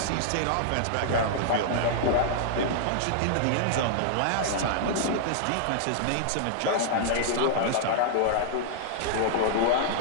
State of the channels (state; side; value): different; both; correlation -0.01